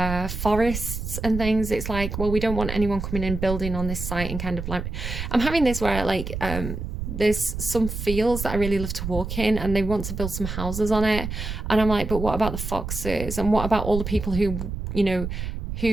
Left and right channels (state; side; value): noise; right; rumble, 5 dB below the sound